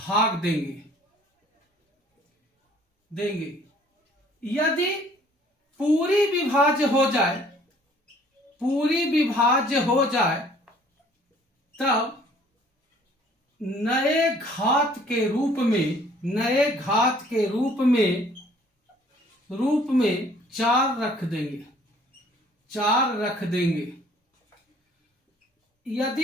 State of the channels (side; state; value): both; normal; correlation 0.57